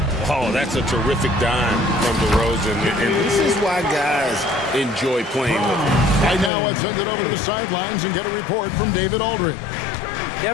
Oh, that's a terrific dime from DeRozan. And this is why guys enjoy playing with him. Right now, let's send it over to the sidelines and get a report from David Aldridge.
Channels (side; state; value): right; drops out; at 6.5 s